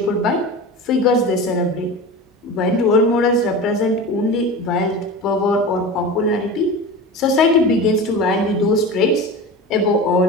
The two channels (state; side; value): normal; both; correlation 0.30